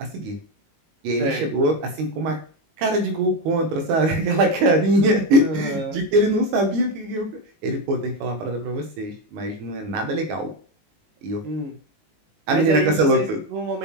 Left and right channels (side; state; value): left; late; 19 ms